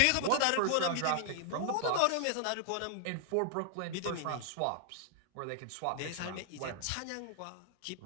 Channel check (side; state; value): both; different; correlation 0.00